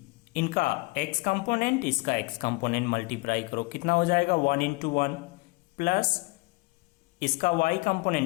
इनका x कंपोनेंट इसका x कंपोनेंट मल्टीप्लाई करो, कितना हो जाएगा 1 इंटू 1 प्लस इसका y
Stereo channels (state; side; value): quieter; right; 25.4 dB